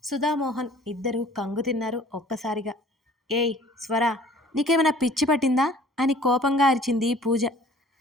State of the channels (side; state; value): both; normal; correlation 0.51